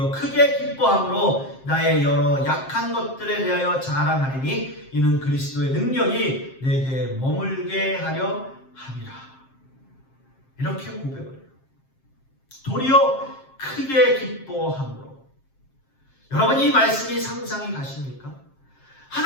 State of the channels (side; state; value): right; late; 7.5 ms